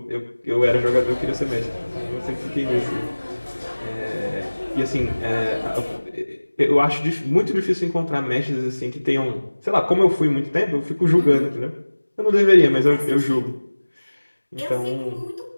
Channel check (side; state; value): both; inverted; correlation -1.00